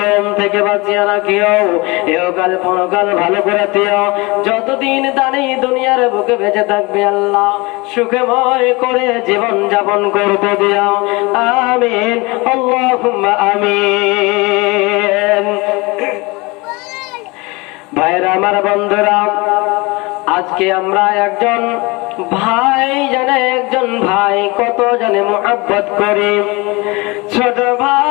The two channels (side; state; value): right; quieter; 25.1 dB